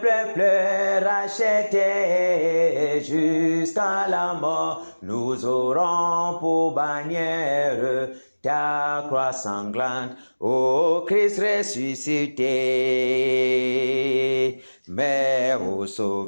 racheté jusqu'à la mort. Nous aurons pour bannière ta croix sanglante, ô Christ ressuscité. Mais ô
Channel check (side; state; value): both; inverted; correlation -1.00